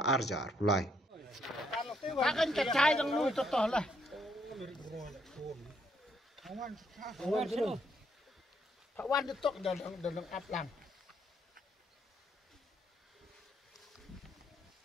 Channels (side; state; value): both; normal; correlation 0.72